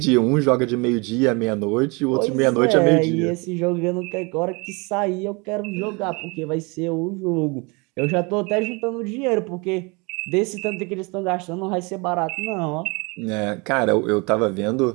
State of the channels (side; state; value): left; quieter; 28.6 dB